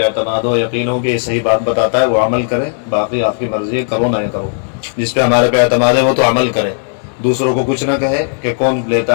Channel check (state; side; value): silent; right; digital silence